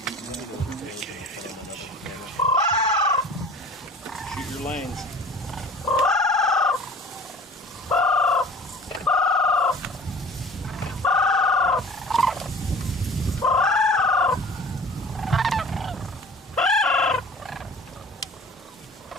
Shoot your lanes.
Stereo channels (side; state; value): both; normal; correlation 0.45